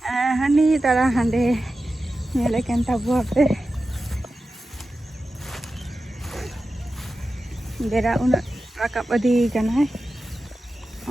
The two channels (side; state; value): both; normal; correlation 0.93